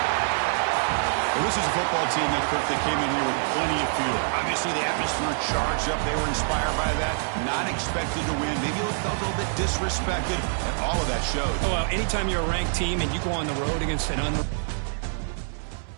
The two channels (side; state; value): left; silent; 61 dB below the other